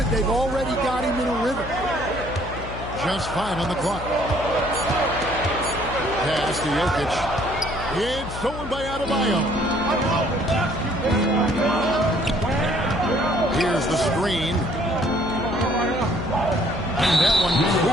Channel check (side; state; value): left; noise; hum, 10 dB below the sound